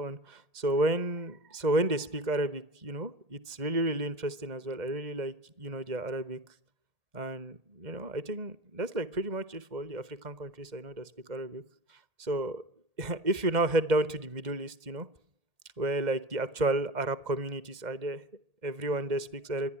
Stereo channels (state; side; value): late; left; 2.0 ms